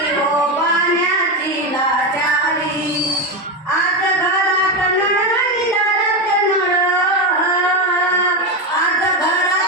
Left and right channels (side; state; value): both; normal; correlation 0.13